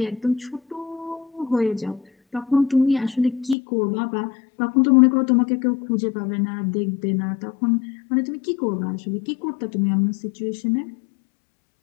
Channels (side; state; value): right; drops out; at 3.6 s